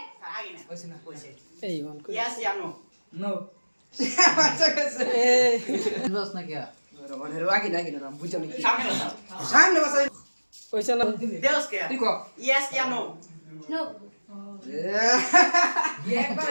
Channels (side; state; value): both; inverted; correlation -1.00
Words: এই গন Yes ya no. नो अच्छा कैसे বস না কি आगे ना आगे ना बुझो नहीं Sabi na. सामने बस ওইসা না Deus kaya. देखो Yes ya no. No. ये एक